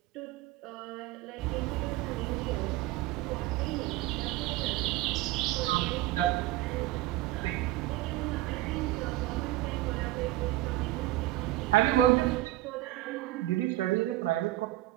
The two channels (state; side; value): quieter; left; 16.1 dB